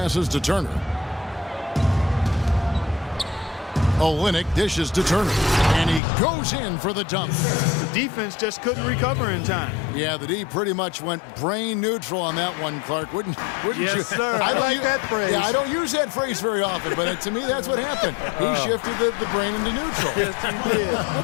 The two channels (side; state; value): right; drops out; at 6.0 s